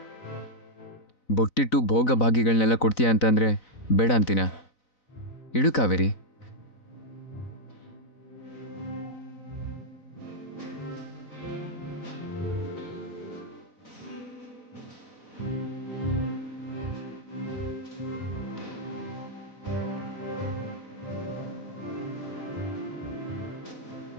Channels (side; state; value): right; late; 4.0 ms